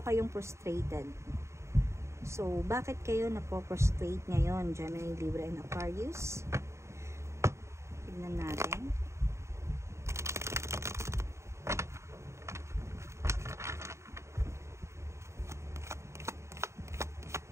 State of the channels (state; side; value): late; left; 0.14 ms